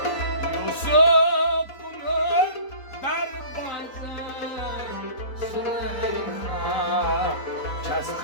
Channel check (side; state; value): right; late; 3.9 ms